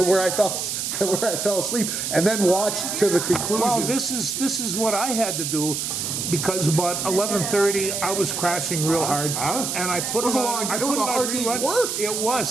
where I fell asleep and then watch to the conclusion. Well, this is what I had to do. Because about 11:30, I was crashing real hard, and I put It was it a on. long- I it was put a hard day's rerun. work. It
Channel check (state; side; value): noise; right; hiss, 2 dB below the sound